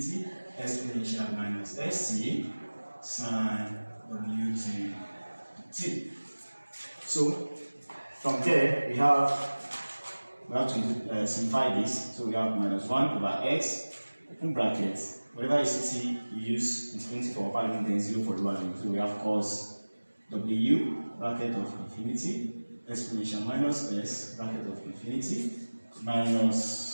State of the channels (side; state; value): both; inverted; correlation -1.00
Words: exponential minus st sine wt dt. So, from there, we have to simplify this. So we have minus 1 over x, open bracket, whatever is ct, you use infinity for upper limit, then 0 for lower limit. So we have cos w bracket of infinity exponential minus s bracket of infinity